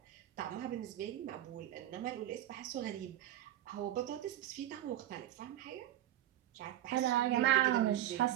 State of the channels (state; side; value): quieter; left; 12.8 dB